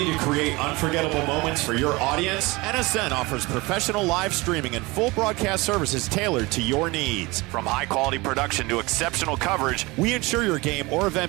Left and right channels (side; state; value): left; quieter; 23.4 dB